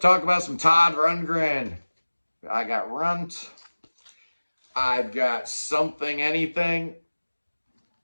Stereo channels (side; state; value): both; inverted; correlation -1.00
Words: about some Todd Rundgren. I got Runt. I've got Something Anything.